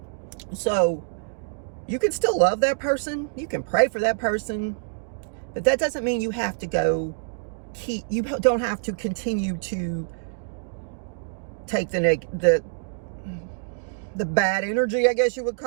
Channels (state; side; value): silent; left; digital silence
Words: So, you can still love that person. You can pray for that person. But that doesn't mean you have to you don't have to continue to take the bad energy, I guess you would